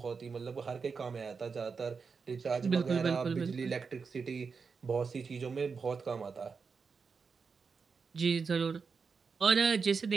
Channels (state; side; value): quieter; left; 5.3 dB